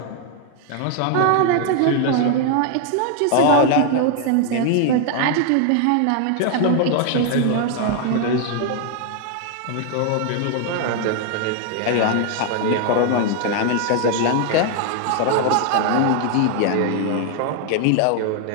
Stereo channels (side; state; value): both; different; correlation 0.00